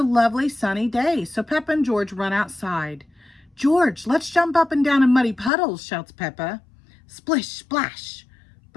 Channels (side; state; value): right; drops out; at 5.5 s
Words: lovely sunny day, so Peppa and George run outside. George, let's jump up and down in muddy puddles, shouts Peppa. Splish, splash.